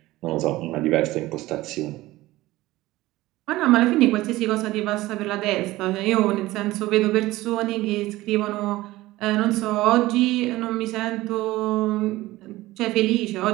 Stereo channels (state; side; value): quieter; left; 17.8 dB